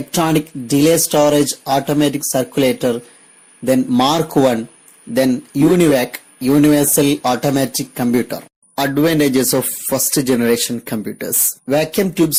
delay storage automatic circulator, then Mark I, then UNIVAC, universal automatic computer. Advantages of first generation computers. Vacuum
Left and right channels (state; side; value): identical; both; correlation 1.00